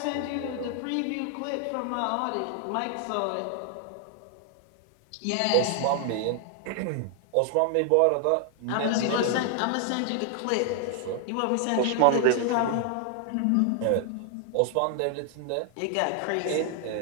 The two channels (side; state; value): both; different; correlation 0.00